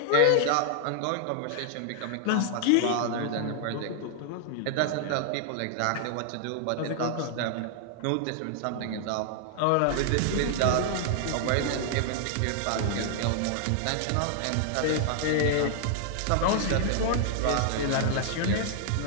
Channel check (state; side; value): different; both; correlation 0.00